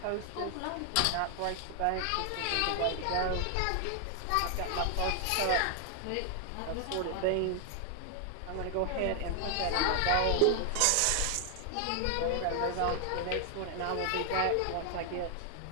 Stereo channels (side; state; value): both; different; correlation 0.00